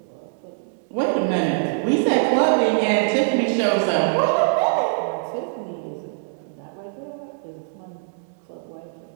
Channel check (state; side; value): silent; left; digital silence